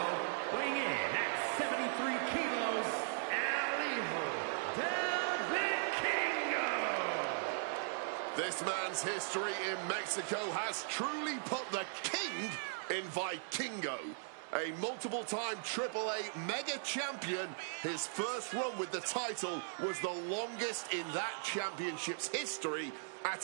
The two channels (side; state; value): left; silent; 52 dB below the other